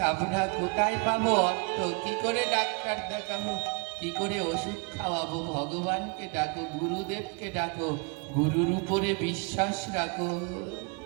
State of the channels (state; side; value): quieter; left; 34.2 dB